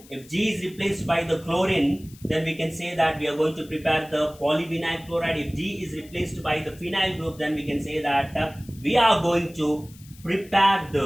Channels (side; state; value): left; noise; hiss, 23 dB below the sound